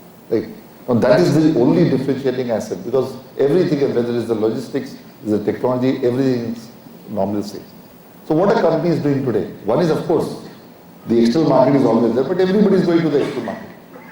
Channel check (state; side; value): identical; both; correlation 1.00